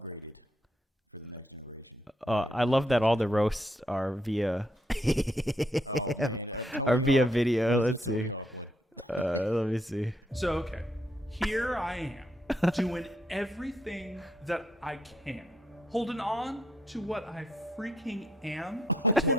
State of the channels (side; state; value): both; normal; correlation 0.74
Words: for the next generation. I love that all the roasts are via Oh man, Tony Or via Hawk. video, What is the let's Tony see. Hawk one? let me see. So, okay, here I am, doing everything that I can, holding on to what I freaking am.